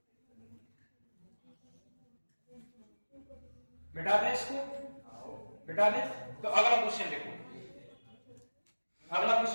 मिटा दें इसको, मिटा दें। तो अगला क्वेश्चन देखो, अगला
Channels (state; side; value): inverted; both; correlation -1.00